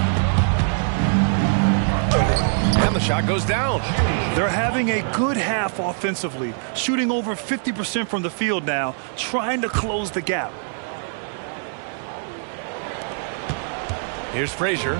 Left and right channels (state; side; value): silent; left; 64 dB below the other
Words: And the shot goes down. They're having a good half offensively, shooting over 50% from the field now, trying to close the gap. Here's